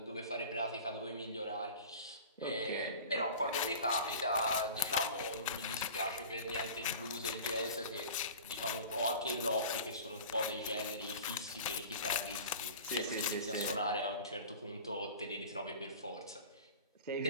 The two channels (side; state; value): both; inverted; correlation -0.38